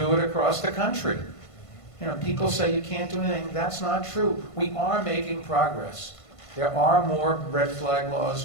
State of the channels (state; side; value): late; right; 1.5 ms